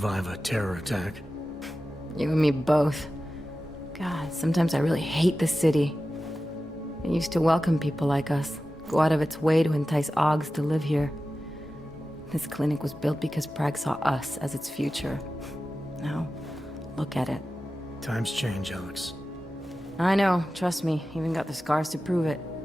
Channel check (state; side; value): normal; both; correlation 0.94